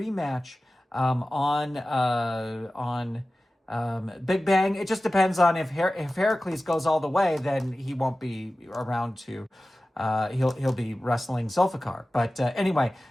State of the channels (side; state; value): both; normal; correlation 0.96